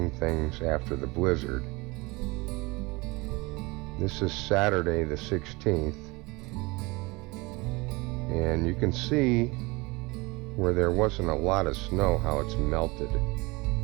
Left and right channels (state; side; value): quieter; left; 24.4 dB